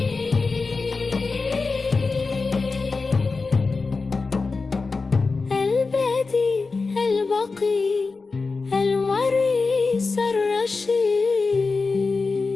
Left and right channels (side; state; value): right; quieter; 4.1 dB